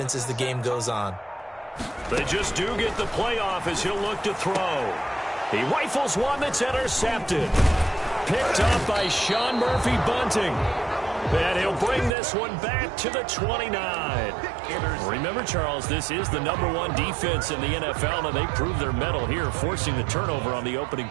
as the game goes on. They just do get the play off as he'll look to throw. He rifles one that's intercepted. Picked up by Sean Murphy-Bunting. And he'll bring this one back to the 29. Remember, Charles, this is the #1 defense in the NFL, and they prove their mettle here, forcing the turnover on the opening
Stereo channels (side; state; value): left; drops out; at 12.2 s